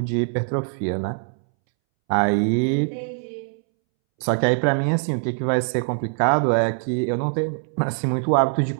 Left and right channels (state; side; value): silent; left; 64 dB below the other